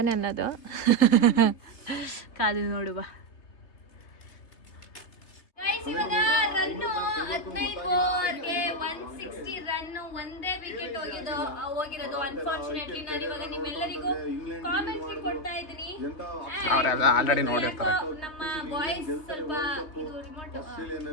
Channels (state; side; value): late; right; 3.3 ms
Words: ಅನ್ನೋದು. ಕಾದು ನೋಡುವ. ಇವಾಗ ರನ್ನು 15 ಓವರ್ಗೆ 160 ರನ್ನು, ಒಂದೇ ವಿಕೆಟ್ ಹೋಗಿರೋದು. ಅನ್ಫಾರ್ಚುನೇಟ್ಲಿ ನಾನು ಇವಾಗ ನಿಮ್ಮೆಲ್ಲರಿಗೂ ಕಾಮೆಂಟ್ರಿ ಕೊಡ್ತಾ ಇದ್ದೀನಿ. ಅವರೆಲ್ಲ ಆಲ್ರೆಡಿ ನೋಡಿರ್ತಾರೆ. ನಮ್ಮ ಬಾಯ್ಸ್ ಸ್ವಲ್ಪ ಇದು ರಿಮೋಟ್